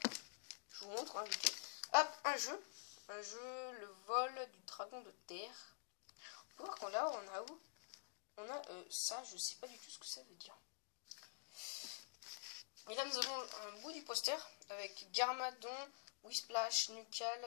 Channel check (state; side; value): silent; right; digital silence